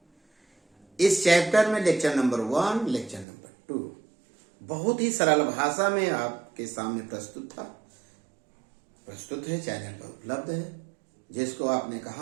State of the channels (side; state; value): left; drops out; at 3.2 s